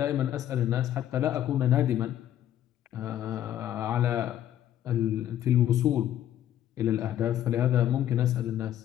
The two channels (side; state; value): right; quieter; 11.6 dB